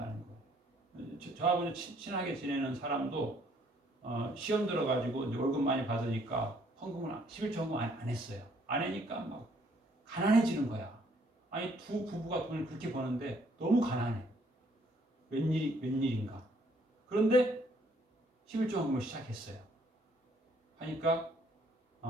거예요. 저하고 친하게 지내는 사람도 시험 들어가지고 이제 월급 많이 받으니까 헌금을 11조 헌금 안 했어요. 안 하니까 막 가난해지는 거야. 아니 두 부부가 돈을 그렇게 버는데 너무 가난해. 웬일인가. 그런데 11조 헌금을 시작했어요. 하니까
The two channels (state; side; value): normal; both; correlation 0.65